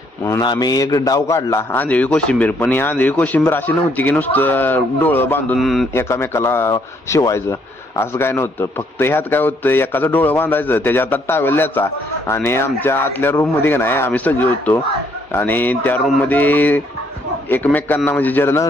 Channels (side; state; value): both; normal; correlation 0.68